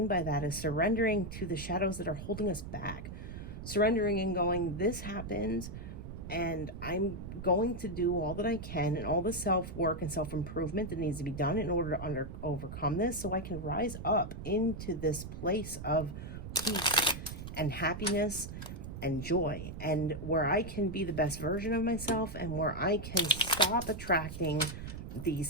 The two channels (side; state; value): right; noise; rumble, 9 dB below the sound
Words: by that is surrendering to the shadows that are holding us back. Surrendering and going, this happened, and I'm going to do all that I can and all the self-work and self-improvement that needs to be done in order to overcome this, so I can rise up into this place of peace and happiness and joy, and where I can be the best version of myself, and where I can stop attracting these